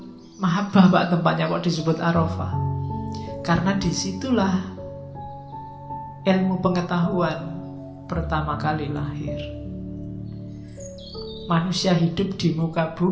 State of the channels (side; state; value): both; identical; correlation 1.00